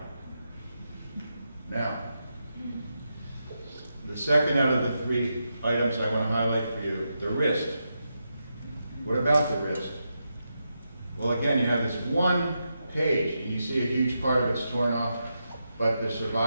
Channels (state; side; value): inverted; both; correlation -0.86